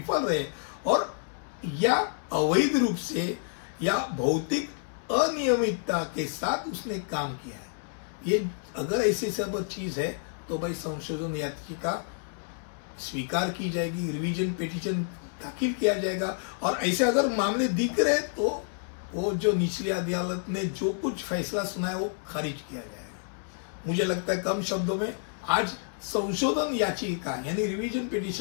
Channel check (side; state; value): right; silent; 58 dB below the other